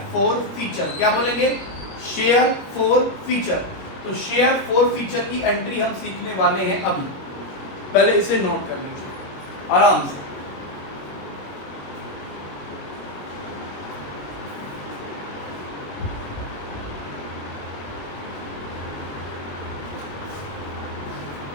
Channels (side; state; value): right; late; 21 ms